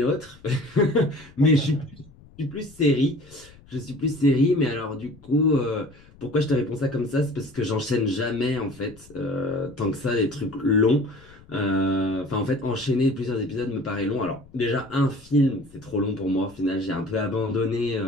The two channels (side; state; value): left; noise; rumble, 24 dB below the sound